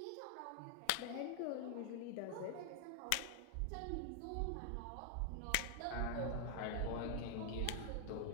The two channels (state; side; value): different; both; correlation 0.00